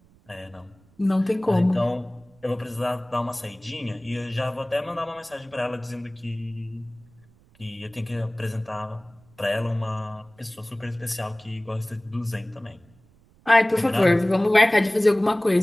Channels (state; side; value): noise; right; rumble, 30 dB below the sound